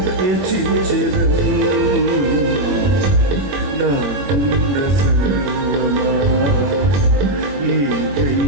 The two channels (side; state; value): left; late; 21 ms